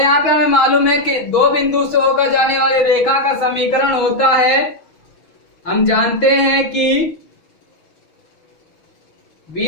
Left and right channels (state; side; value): late; right; 6.4 ms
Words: पे हमें मालूम है कि दो बिंदु से होकर जाने वाली रेखा का समीकरण होता है, हम जानते हैं कि